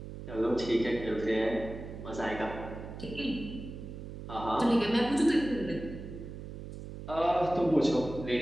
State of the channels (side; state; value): right; noise; hum, 10 dB below the sound